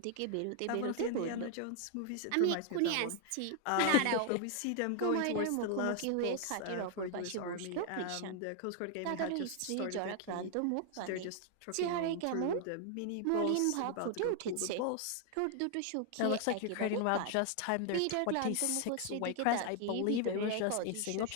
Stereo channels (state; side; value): different; both; correlation 0.00